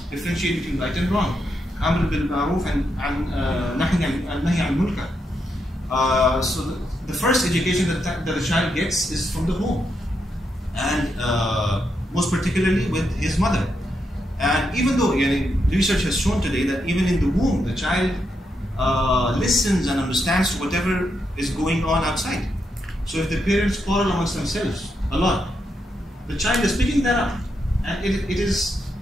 Differentiate between right and wrong. Amr bil ma'roof and nahy anil munkar. So the first education that a child gets is from the home, and most particularly with his mother. And even though research has shown today that even in the womb, the child listens and understands whatever is going on outside. So if the parents quarrel amongst themselves a lot, the child is picking that up, and it is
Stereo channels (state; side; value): normal; both; correlation 0.82